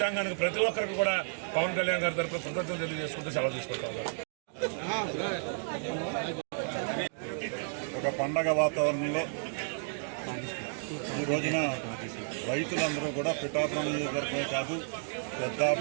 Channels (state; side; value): silent; left; digital silence